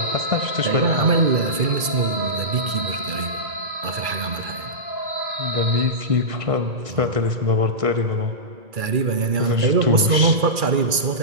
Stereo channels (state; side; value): late; left; 2.4 ms